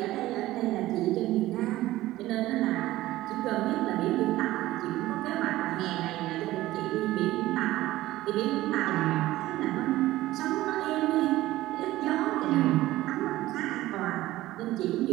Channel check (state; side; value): quieter; left; 16.3 dB